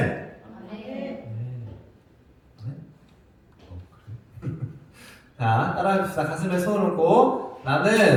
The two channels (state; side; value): identical; both; correlation 1.00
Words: 자, 따라합시다. 가슴에 손을 얹고,